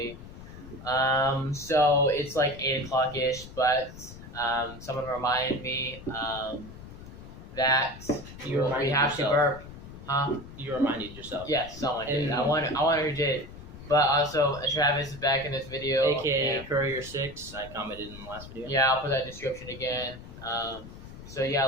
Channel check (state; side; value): noise; left; rumble, 15 dB below the sound